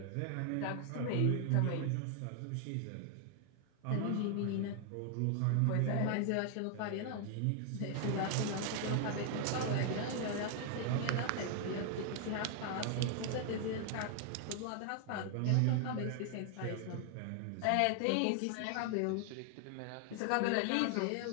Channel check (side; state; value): both; different; correlation 0.00